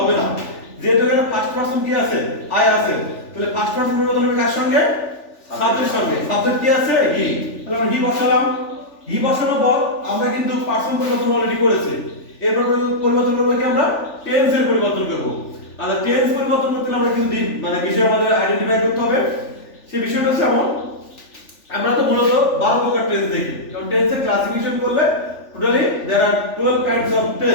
না। যেহেতু এখানে ফার্স্ট পার্সন কি আছে আই আছে, তাহলে ফার্স্ট পার্সন পরিবর্তন হবে কার সঙ্গে সাবজেক্টের সঙ্গে, সাবজেক্ট কি আছে হি, তাহলে আমরা হি বসালাম। হি বসানোর পর আমরা কিন্তু পার্সন পরিবর্তন অলরেডি করেছি, এরপর পরিবর্তন করব কি আমরা টেন্স এর পরিবর্তন করব, আর টেন্স পরিবর্তন করতে আমরা কিন্তু মানে বিষয় আমাদের আইডেন্টিফাই করতে হবে। সেই বিষয়টা হচ্ছে এমন, আমরা তো মূলত 12 প্রকার টেন্স দেখি, কারণ টেন্সের ক্লাসিফিকেশন করলে totally there are 12 kinds of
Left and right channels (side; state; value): right; late; 3.4 ms